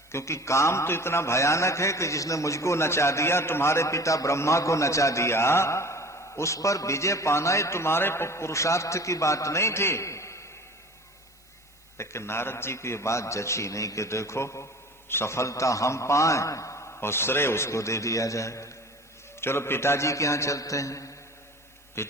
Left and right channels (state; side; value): noise; right; hiss, 30 dB below the sound